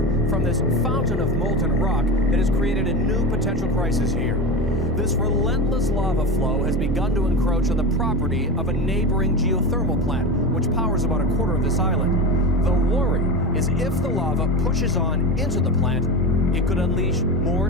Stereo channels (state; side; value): normal; both; correlation 0.23